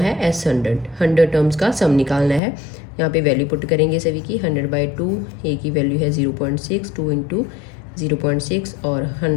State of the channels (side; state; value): right; drops out; at 2.4 s